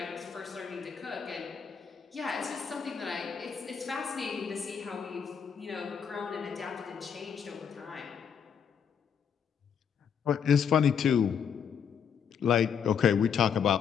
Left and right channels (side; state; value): right; quieter; 7.4 dB